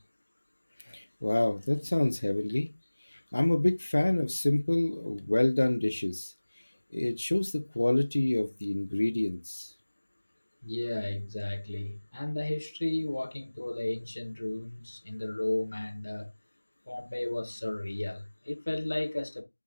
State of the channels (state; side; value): inverted; both; correlation -1.00